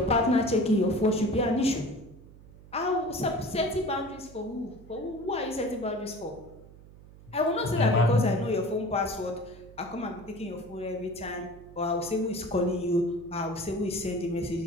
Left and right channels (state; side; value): noise; right; hum, 20 dB below the sound